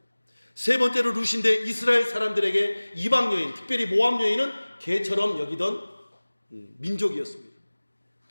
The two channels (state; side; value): inverted; both; correlation -1.00